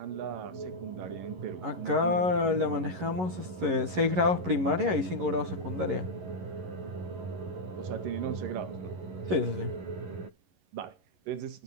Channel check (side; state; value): left; late; 11 ms